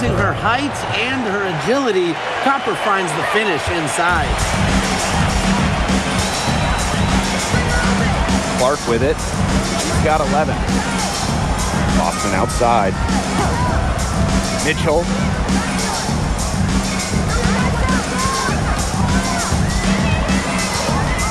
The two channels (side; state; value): both; identical; correlation 1.00